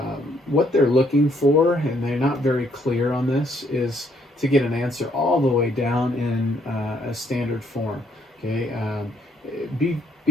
what they're looking for, and they're not very clear on this, is to get an answer all the way down in a standard form. Okay,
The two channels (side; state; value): both; normal; correlation 0.69